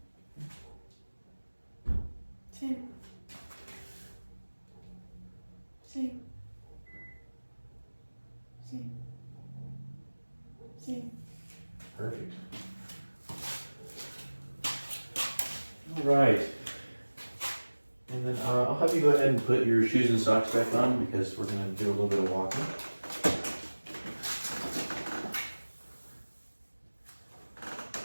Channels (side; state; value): both; inverted; correlation -1.00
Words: Same. Same. Same. Same. Perfect. All right. And then I'll have you go ahead and put your shoes and socks back on because we're going to do a little bit of walking.